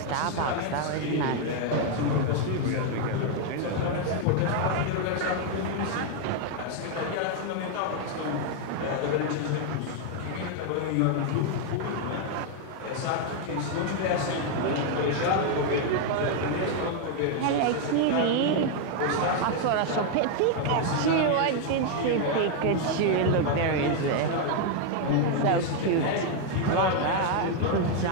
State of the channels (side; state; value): both; different; correlation 0.00